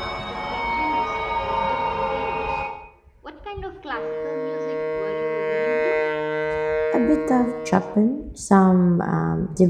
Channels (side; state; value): both; identical; correlation 1.00